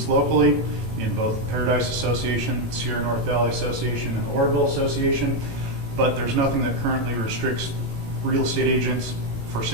locally in both Paradise Association, Sierra North Valley Association, and the Orville Association, but there's nothing that currently restricts real estate agents for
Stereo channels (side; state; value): left; late; 18 ms